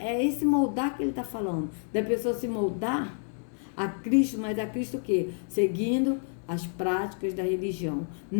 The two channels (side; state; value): right; silent; 59 dB below the other